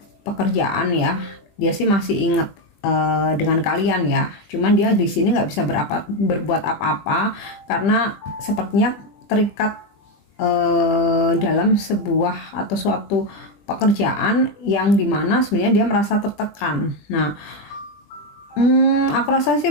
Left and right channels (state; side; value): late; right; 20 ms